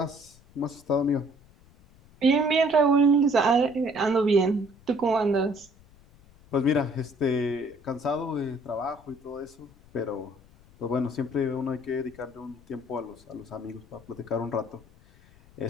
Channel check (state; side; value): noise; left; rumble, 26 dB below the sound